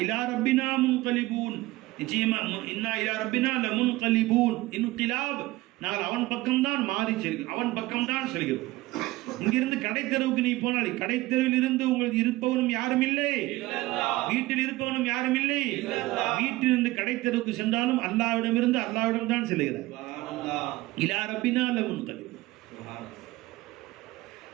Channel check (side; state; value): left; quieter; 19.0 dB